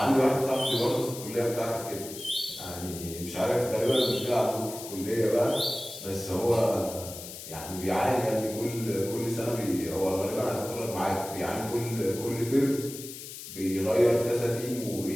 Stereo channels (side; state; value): left; noise; hiss, 11 dB below the sound